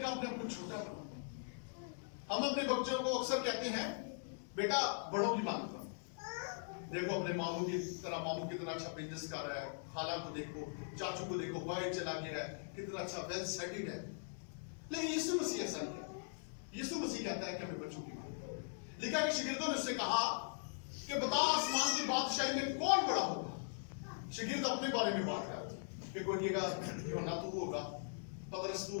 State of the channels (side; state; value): right; silent; digital silence